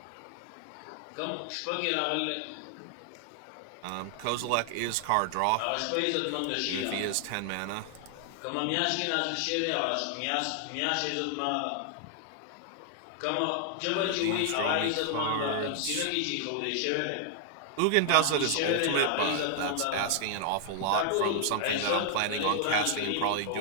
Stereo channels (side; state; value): both; different; correlation 0.00